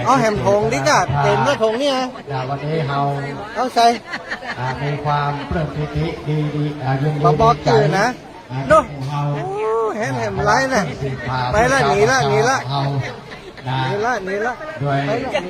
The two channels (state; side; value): identical; both; correlation 1.00